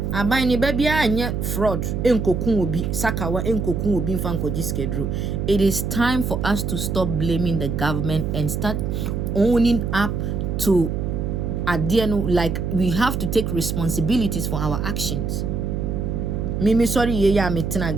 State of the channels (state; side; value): noise; right; hum, 2 dB below the sound